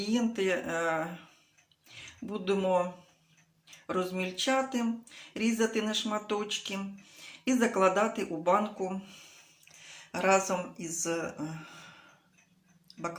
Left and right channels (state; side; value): identical; both; correlation 1.00